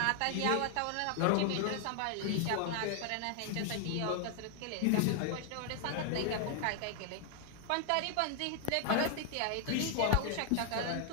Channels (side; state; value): both; different; correlation 0.00